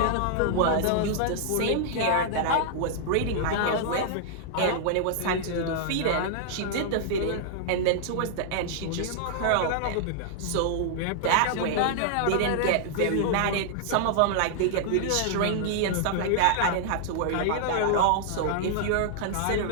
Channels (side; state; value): both; different; correlation -0.01